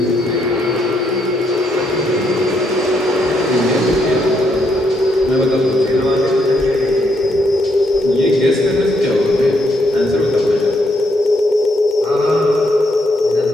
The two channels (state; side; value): normal; both; correlation 0.76